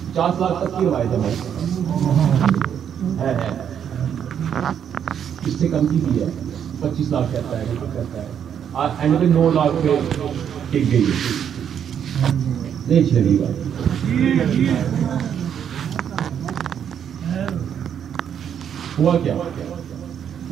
50 लाख तक की रवायत है भाई, है इससे कम की भी है। 25 लाख कहता है, कहता है एंड में 9 लाख पे टिक गई है। नहीं चलेगी बात। हुआ क्या?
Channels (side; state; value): left; quieter; 8.6 dB